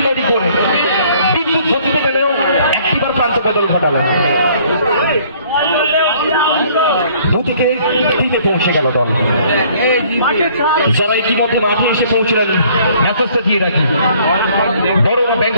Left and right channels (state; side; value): inverted; both; correlation -0.59